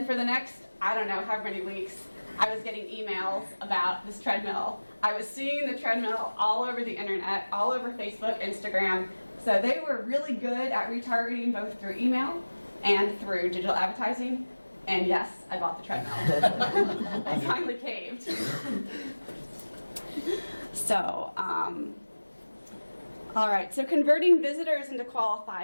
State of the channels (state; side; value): inverted; both; correlation -1.00